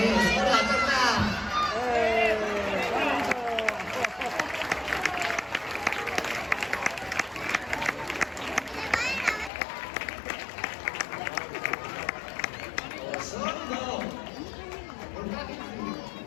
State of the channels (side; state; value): right; drops out; at 9.5 s